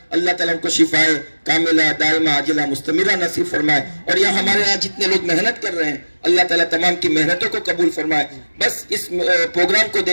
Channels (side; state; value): both; inverted; correlation -1.00